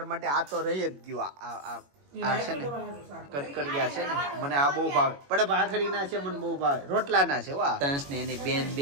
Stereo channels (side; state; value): left; late; 21 ms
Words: માટે આ તો રહી જ ગયું. આ છે ને કટકડિયા છે ને, મને આ બહુ ભાવે. પણ ભાખરી ના છે મને બહુ ભાવે, રોટલા ના છે. વાહ, તંસ ને એની બેન